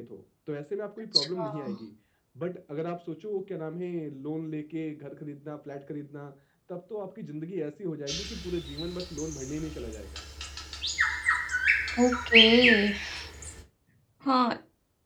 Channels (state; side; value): identical; both; correlation 1.00